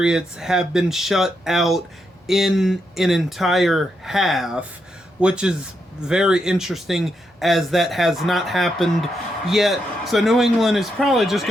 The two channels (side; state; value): both; normal; correlation 0.82